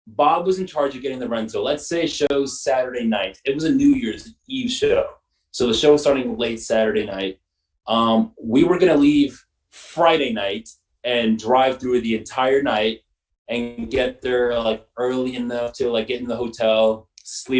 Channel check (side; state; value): both; identical; correlation 1.00